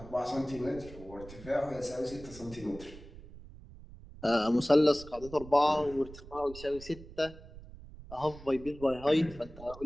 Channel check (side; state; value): right; noise; rumble, 16 dB below the sound